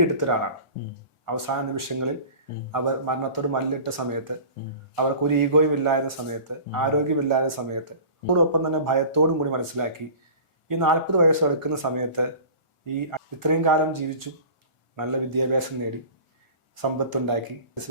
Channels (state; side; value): late; right; 1.4 ms